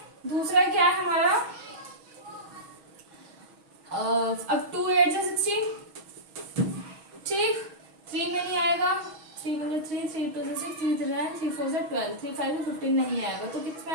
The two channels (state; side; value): late; left; 6.3 ms